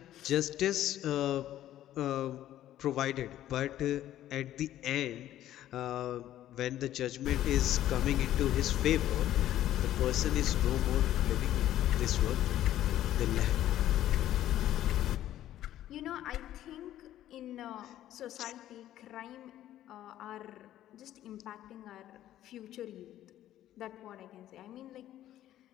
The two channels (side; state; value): right; quieter; 12.8 dB